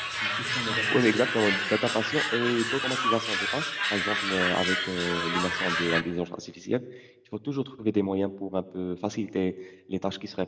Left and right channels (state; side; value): identical; both; correlation 1.00